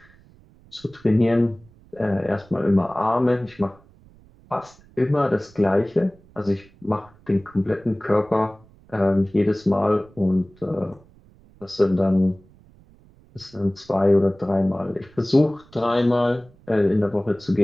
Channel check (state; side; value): noise; right; rumble, 27 dB below the sound